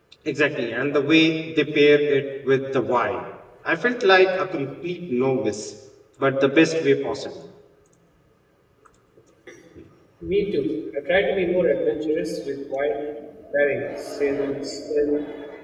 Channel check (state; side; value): identical; both; correlation 1.00